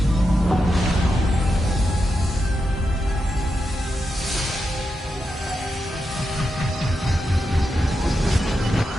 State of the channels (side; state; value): both; normal; correlation 0.87